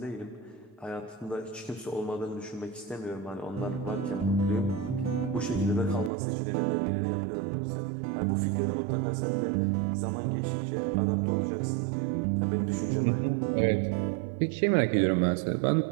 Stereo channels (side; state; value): left; drops out; at 6.1 s